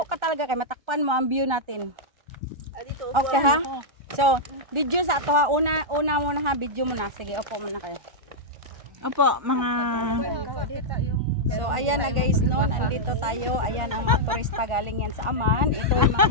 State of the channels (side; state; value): left; late; 1.4 ms